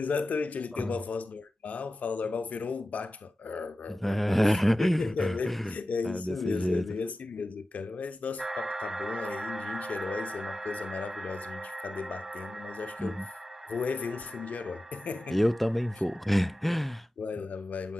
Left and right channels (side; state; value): both; normal; correlation 0.94